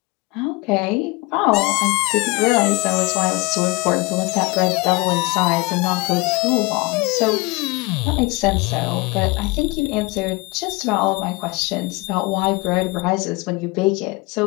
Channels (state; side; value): quieter; right; 25.1 dB